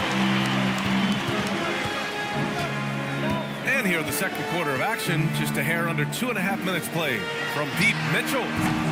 And here in the second quarter of action, just a hair under 2.5 minutes played. From deep, Mitchell.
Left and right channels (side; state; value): both; identical; correlation 1.00